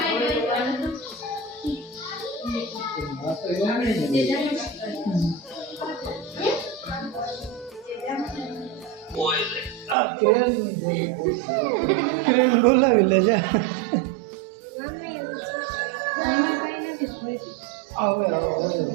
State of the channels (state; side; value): drops out; left; at 10.0 s